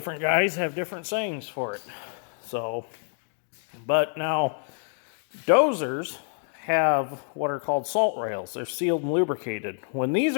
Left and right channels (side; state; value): right; silent; 56 dB below the other